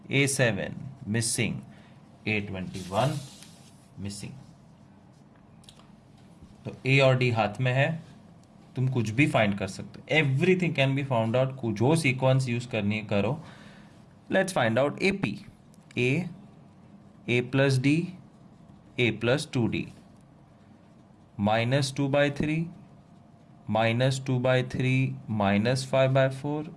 A7 missing, A21 missing. तो A और D हाथ में है, तुम कुछ भी फाइंड कर सकते हो. Everything can be found out. जो सीक्वेंस यूज करनी है करो. Let's find out AP. A plus D, A plus 2D. -2/3, -2/3, -5/4,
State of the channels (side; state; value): both; identical; correlation 1.00